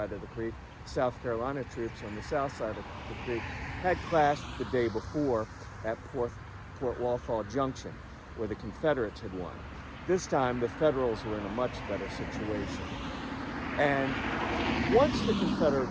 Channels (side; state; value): both; identical; correlation 1.00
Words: of the creek, South Carolina troops on the south side of the creek, had clashed the day before at Port Walthall Junction, where the Confederates had won. This time, the Federals were in a much better situation. And once the